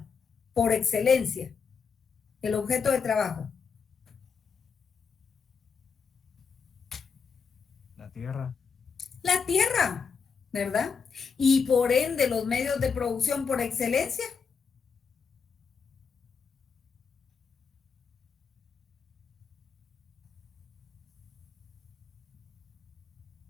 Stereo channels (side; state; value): right; quieter; 5.8 dB